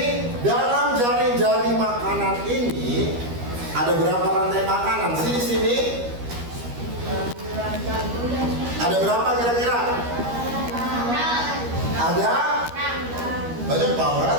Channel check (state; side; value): late; left; 13 ms